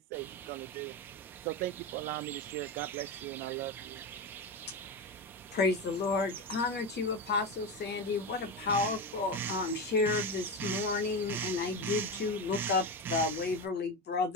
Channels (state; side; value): normal; both; correlation 0.17